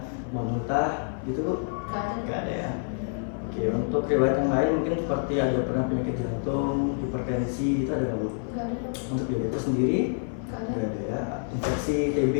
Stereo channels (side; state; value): right; silent; 60 dB below the other